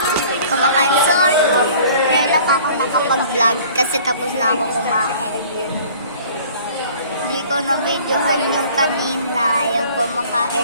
Kumakain. Sorry kung ngayon lang ako nakapag-vlog kasi tapos na ako kumain. Hindi ko na-videohan yung kanina, yung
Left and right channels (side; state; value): both; inverted; correlation -0.50